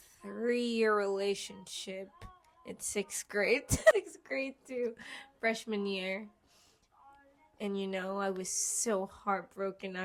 3-year relationship in 6th grade. 6th grade to freshman year. And, you know, I was so heartbroken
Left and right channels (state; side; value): identical; both; correlation 1.00